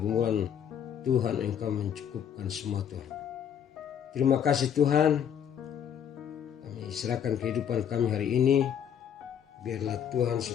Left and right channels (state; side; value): quieter; right; 8.7 dB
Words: Tuhan, Engkau mencukupkan semua Tuhan. Terima kasih Tuhan. Kami serahkan kehidupan kami hari ini. Biarlah Tuhan